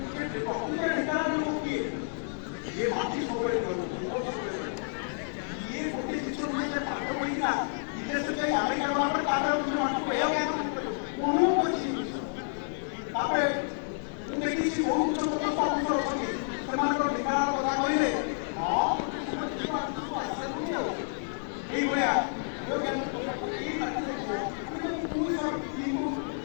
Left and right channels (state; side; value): silent; right; 58 dB below the other